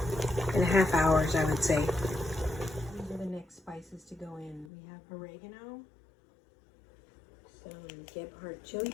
hours, I would say. These are the next spices to go in. We have oregano, some Gebhardt chili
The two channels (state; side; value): drops out; right; at 4.7 s